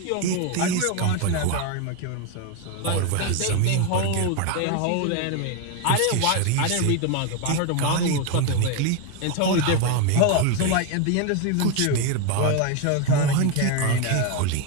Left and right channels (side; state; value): both; different; correlation 0.02